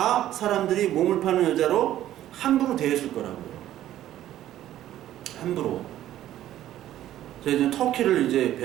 사람들이 몸을 파는 여자로 함부로 대했을 거라고요. 함부로. 제가 이제 터키를 이제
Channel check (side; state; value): left; quieter; 12.8 dB